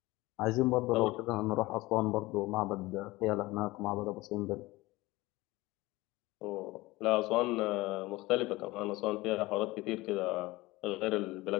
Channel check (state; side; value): quieter; right; 20.1 dB